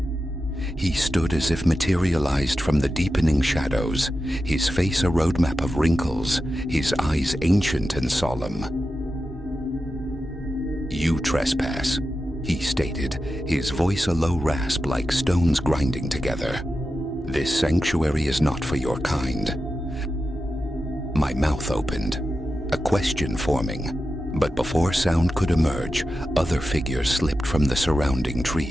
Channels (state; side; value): normal; both; correlation 0.91